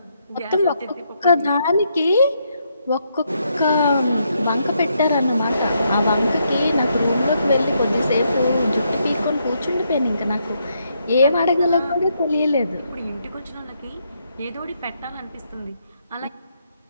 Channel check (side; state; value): both; inverted; correlation -0.77